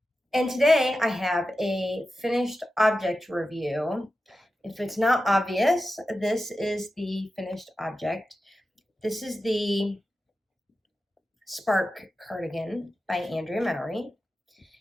And today I have a finished object review. If it's not obvious, this is the finished object. This is the Spark Cardigan by Andrea Mowry.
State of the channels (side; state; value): both; normal; correlation 0.92